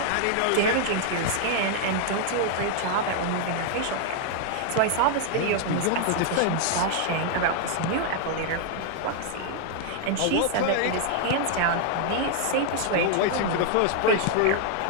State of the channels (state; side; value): different; both; correlation 0.00